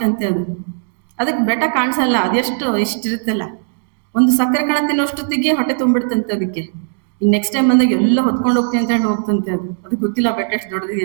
ಅದಕ್ಕೆ ಬೆಟ್ಟ ಕಾಣಿಸಲ್ಲ, ಅದೆಷ್ಟು ಇಷ್ಟಿರುತ್ತಲ್ಲ, ಒಂದು ಸಕ್ಕರೆ ಕಣ ತಿನ್ನೋಷ್ಟೊತ್ತಿಗೆ ಹೊಟ್ಟೆ ತುಂಬಿಡ್ತಂತೆ ಅದಕ್ಕೆ. ಇನ್ನು ನೆಕ್ಸ್ಟ್ ಟೈಮ್ ಬಂದಾಗ ಎಲ್ಲ ಹೊತ್ಕೊಂಡು ಹೋಗ್ತೀನಿ ಅಂತ ಹೇಳಿ ಹೋಗ್ತಂತೆ. ಅದು ಗೊತ್ತಿಲ್ಲ ಬೆಟ್ಟ ಎಷ್ಟು ದೊಡ್ಡದಿದೆ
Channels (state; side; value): silent; left; digital silence